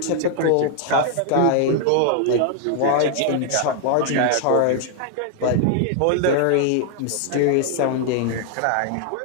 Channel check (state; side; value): different; both; correlation 0.00